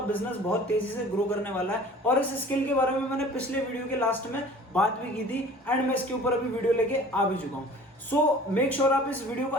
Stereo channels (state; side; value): normal; both; correlation 0.46